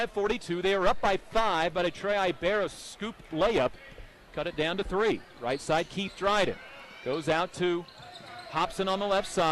They are up by 5, but a Trey Ibarra scoop layup cut it down to 3. Right side, Keith Dryden. Goes out to Hobson on the left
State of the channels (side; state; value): both; identical; correlation 1.00